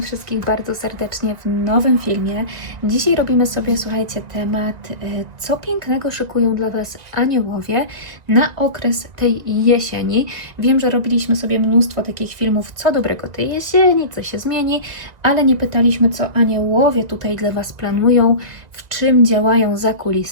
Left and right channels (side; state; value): left; late; 1.9 ms